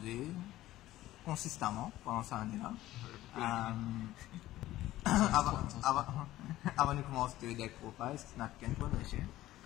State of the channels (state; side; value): quieter; right; 15.3 dB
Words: consistamment pendant cette année là. Avant de commencer le deck profile, c'est n'a qu'un point de chien.